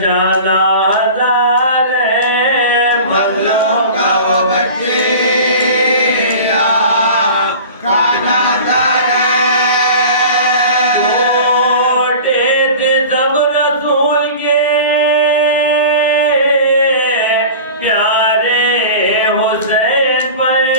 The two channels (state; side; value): inverted; both; correlation -0.37